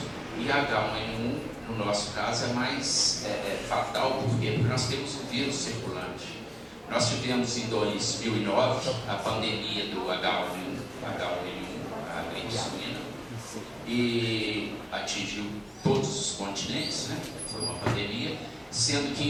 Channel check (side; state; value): both; identical; correlation 1.00